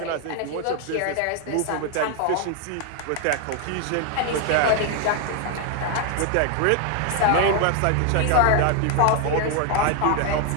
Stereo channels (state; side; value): different; both; correlation 0.00